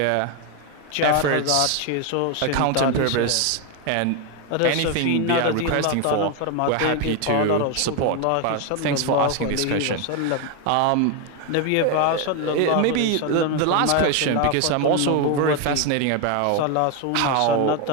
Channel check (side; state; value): both; different; correlation 0.01